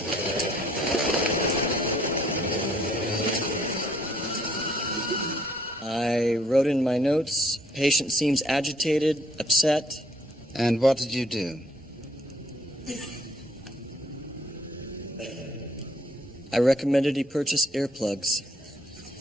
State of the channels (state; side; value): normal; both; correlation 0.65